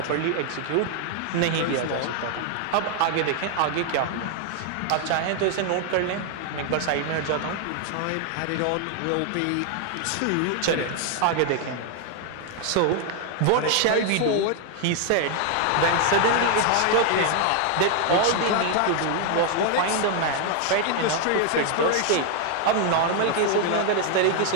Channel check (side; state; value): both; different; correlation 0.00